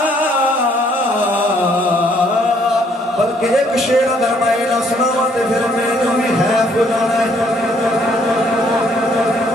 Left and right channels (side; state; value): both; normal; correlation 0.66